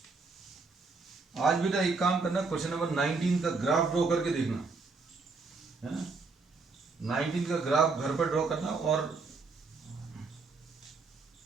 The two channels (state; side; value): quieter; left; 4.2 dB